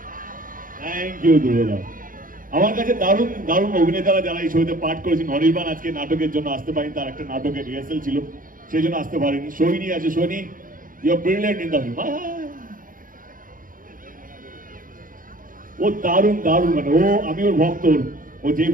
থ্যাংক ইউ ধ্রুবদা। আমার কাছে দারুণ দারুণ অভিনেতারা যারা এই ছবিতে পাঠ করেছেন। অনির্বাণ আজকে নাটকের জন্য আসতে পারেনি, তার একটা নাটকের রিহার্সাল ছিল, সেই জন্য আসতে পারেনি। সোহিনী আছে, Sohini you are brilliant in the film. ও দারুণ দারুণ, মানে ও, আমি ওর ভক্ত। ও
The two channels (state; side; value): late; left; 0.40 ms